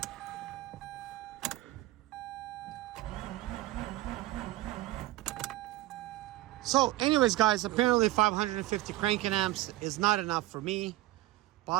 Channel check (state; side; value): quieter; left; 16.7 dB